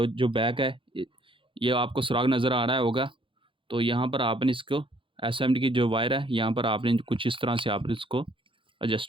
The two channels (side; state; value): left; late; 0.25 ms